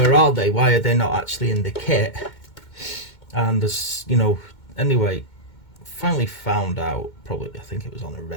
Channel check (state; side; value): late; right; 2.2 ms